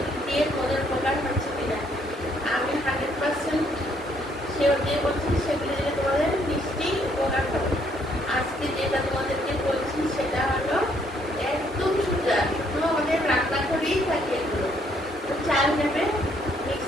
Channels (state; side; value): normal; both; correlation 0.68